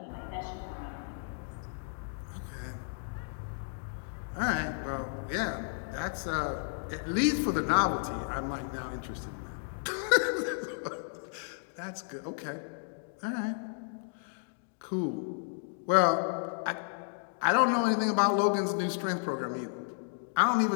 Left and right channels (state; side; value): silent; right; digital silence